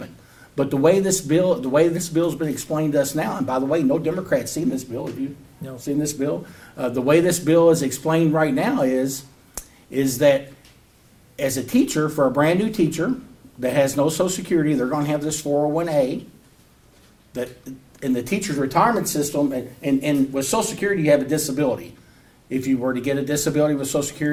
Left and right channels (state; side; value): identical; both; correlation 1.00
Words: But the way this bill's been explained to us now, and by the way, no Democrats seen this bill. Have you seen this bill? The way this bill is explained right now is that as a teacher, for a brand new teacher that has no Social Security, they're going to have this 401A. That in the teacher's retirement system, and with Social Security, you have a disability. If you were to get a disability with Social